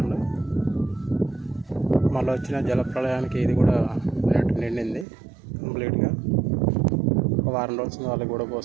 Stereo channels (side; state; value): left; drops out; at 5.1 s